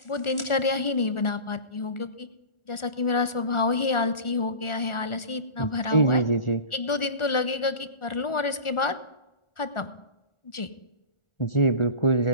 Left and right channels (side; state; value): right; late; 1.4 ms